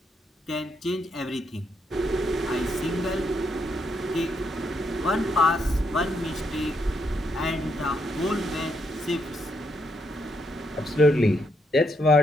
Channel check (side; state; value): both; normal; correlation 0.77